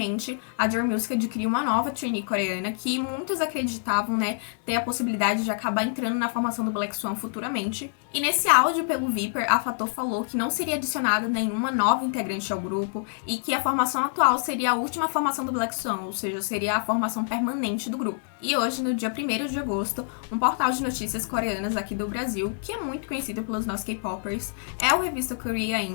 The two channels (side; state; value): right; silent; digital silence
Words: a J Music adquiriu uma nova trainee coreana que muitos acreditavam, né, ter a possibilidade de acabar entrando na formação do Black Swan futuramente. E nesse áudio pelo Viper, a Fator falou que não seria adicionada nenhuma nova integrante ao grupo e que a formação atual seria a última formação do Black Swan, ou seja, seria a formação permanente do grupo. E hoje, no dia 1º de agosto, um portal de notícias coreanas aqui do Brasil, que é muito conhecido pelos nossos K-popers, o Revista Korea